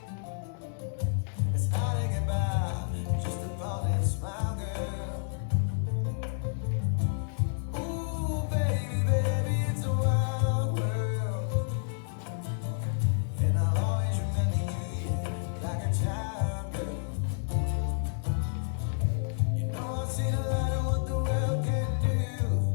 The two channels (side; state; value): right; silent; 58 dB below the other